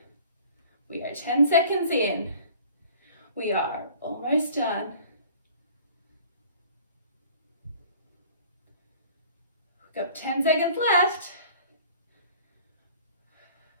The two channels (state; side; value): inverted; both; correlation -0.50